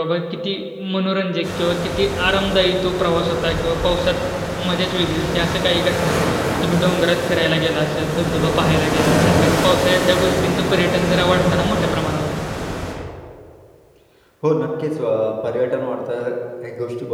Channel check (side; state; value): both; identical; correlation 1.00